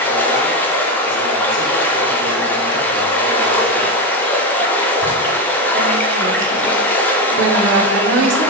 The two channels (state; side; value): normal; both; correlation 0.12